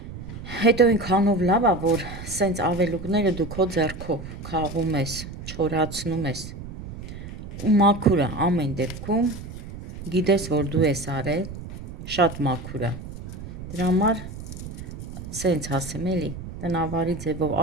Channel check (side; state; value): right; noise; rumble, 11 dB below the sound